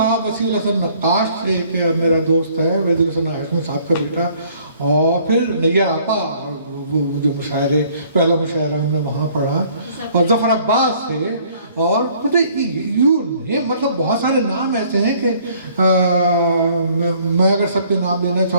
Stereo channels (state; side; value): inverted; both; correlation -0.59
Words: وسیع الحسن نقاش, ایک میرا دوست ہے وحید الحسن ہاشمی صاحب کا بیٹا. اور پھر نیر آپا وہ جو مشاعرے, پہلا مشاعرہ ہم نے وہاں پڑھا. اور ظفر عباس تھے. اور مطلب بہت سارے نام ایسے ہیں کہ میں اگر سب کے نام لینا